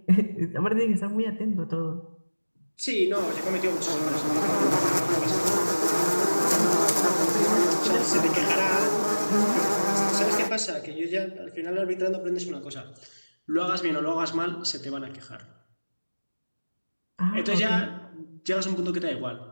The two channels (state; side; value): inverted; both; correlation -1.00